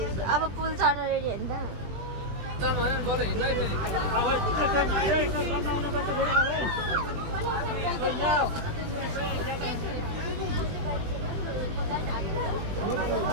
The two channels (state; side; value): late; left; 20 ms